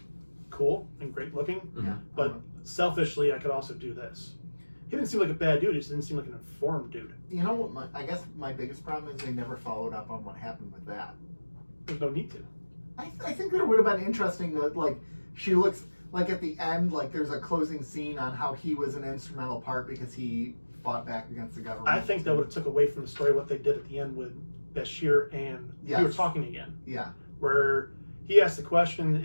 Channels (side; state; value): both; inverted; correlation -1.00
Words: cool and great looking, Mhm. but selfishly, I could also do this. He didn't seem like a bad dude. He just didn't seem like an informed dude. You know what? I guess my biggest problem is they never followed up on what happened with that. There's no need to. I think that it would have been interesting that, like, she looks like at the end, like there's a closing scene on how he was an instrumental part because he fought back against the government. I think that would have took away from the story what they did at the end with Bashir and we were talking again. Yeah. Where he asked the